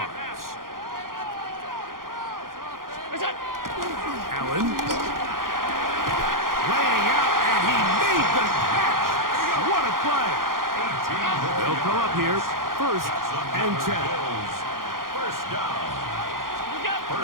Allen laying out, and he made the catch. What a play. They'll come up here first and 10. First down.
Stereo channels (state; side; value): late; left; 0.91 ms